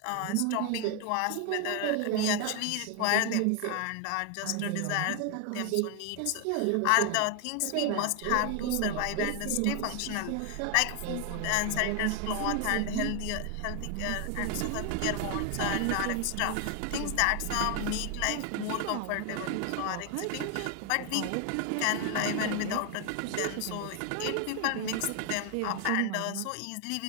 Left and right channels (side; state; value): both; different; correlation 0.00